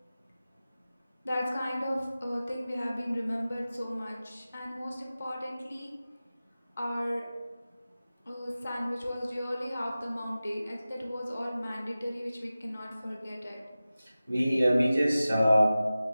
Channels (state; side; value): inverted; both; correlation -0.96